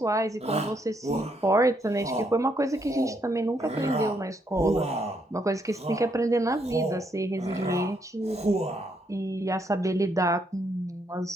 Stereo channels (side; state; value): both; normal; correlation 0.74